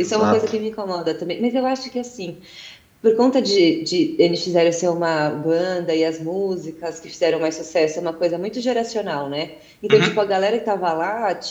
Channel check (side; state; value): both; identical; correlation 1.00